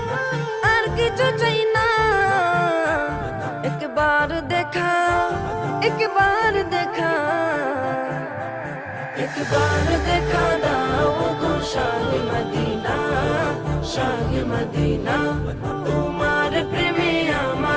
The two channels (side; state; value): both; identical; correlation 1.00